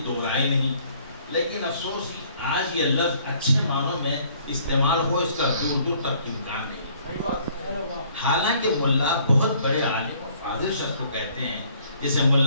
دو رائے نہیں. لیکن افسوس آج یہ لفظ اچھے معنوں میں استعمال ہو اس کا دور دور تک امکان نہیں. حالانکہ ملا بہت بڑے عالم و فاضل شخص کو کہتے ہیں, جیسے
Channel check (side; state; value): both; inverted; correlation -0.60